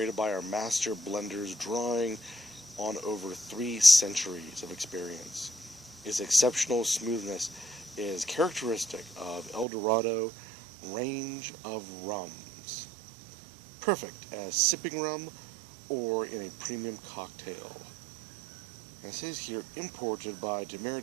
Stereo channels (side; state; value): left; drops out; at 9.7 s